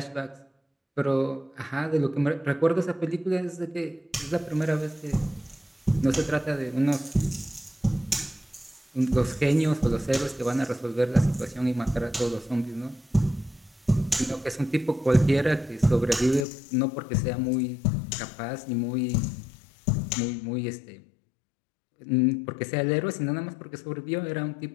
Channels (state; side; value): drops out; right; at 16.4 s